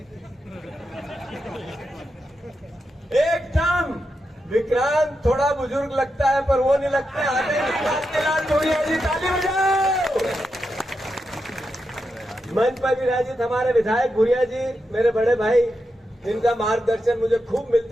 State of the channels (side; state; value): both; normal; correlation 0.87